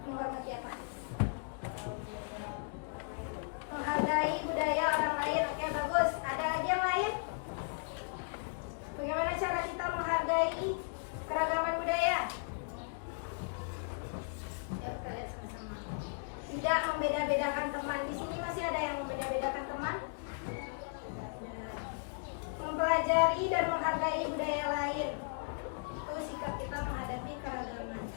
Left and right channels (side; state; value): right; silent; digital silence